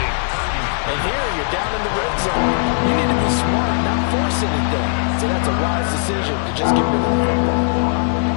And here you're down in the red zone. You need to be smart, not force anything. So that's a wise decision to just get rid of the football.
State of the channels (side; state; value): right; silent; digital silence